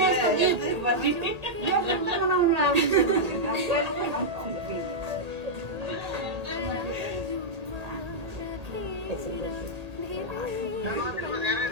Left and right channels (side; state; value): left; late; 1.8 ms